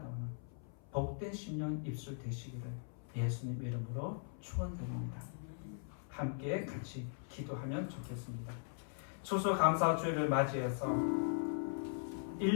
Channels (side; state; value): right; silent; 51 dB below the other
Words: 복된 심령 입술 되시기를 예수님 이름으로 축원드립니다. 함께 같이 기도하면 좋겠습니다. 추수감사주일을 맞이해서